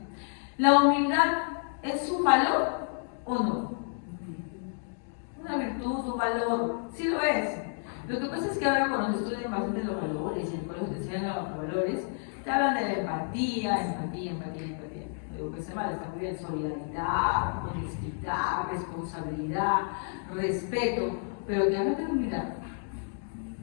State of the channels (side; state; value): right; silent; 58 dB below the other